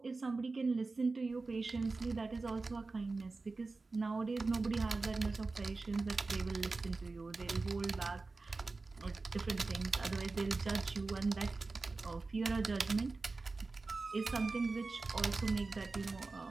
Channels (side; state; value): left; quieter; 3.7 dB